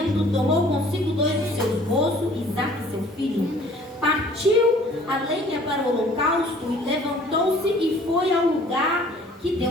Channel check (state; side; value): normal; both; correlation 0.54